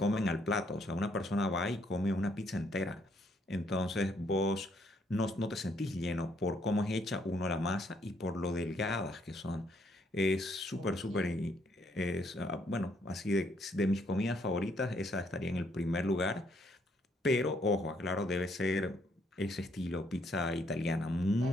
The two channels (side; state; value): both; normal; correlation 0.70